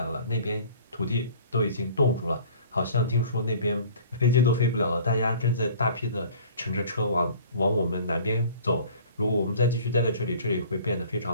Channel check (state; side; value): inverted; both; correlation -0.48